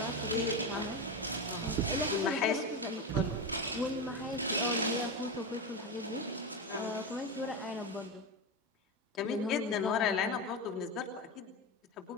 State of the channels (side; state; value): both; normal; correlation 0.16